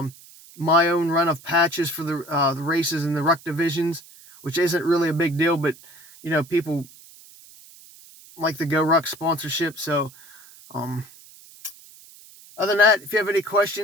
my own run of patches for the races in the Ruck divisions, which isn't really a big deal, but people like the Go Ruck sponsorship. So other than that, if you have any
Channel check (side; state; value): right; noise; hiss, 22 dB below the sound